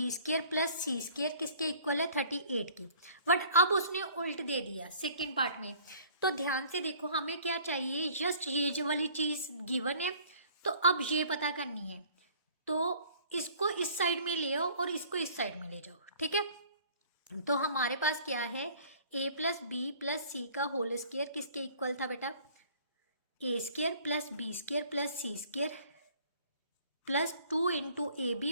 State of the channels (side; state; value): both; inverted; correlation -0.53